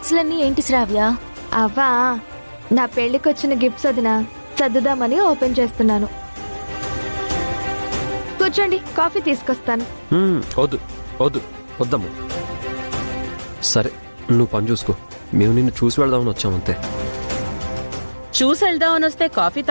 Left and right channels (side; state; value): both; inverted; correlation -1.00